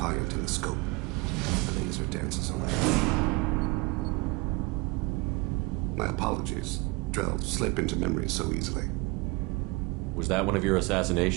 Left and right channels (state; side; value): quieter; left; 25.3 dB